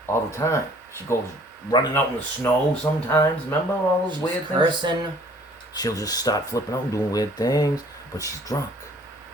all the time. She goes running out in the snow sometimes. Remember all those She's weird things? cursing. She'll just start flipping out and doing weird things, but she's drunk.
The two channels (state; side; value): normal; both; correlation 0.55